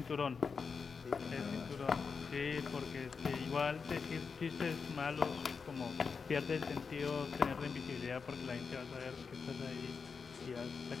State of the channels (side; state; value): right; quieter; 5.4 dB